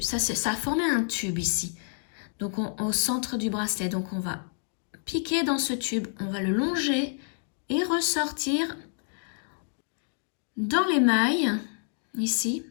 Ça a formé un tube ici. Donc, au centre du bracelet. Donc, on va piquer dans ce tube. On va le longer et ressortir dans les mailles, ici.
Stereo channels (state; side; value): silent; right; digital silence